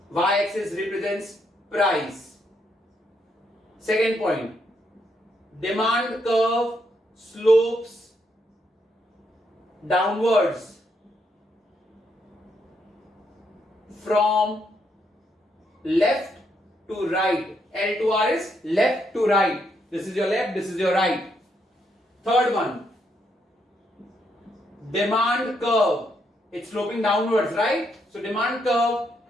y-axis represents price. Second point, demand curve slopes downwards from left to right. L to R is left to right. This is your left, this is your right. Third one, demand curve. It's sloping downwards, right? So demand curve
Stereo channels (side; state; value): both; normal; correlation 0.77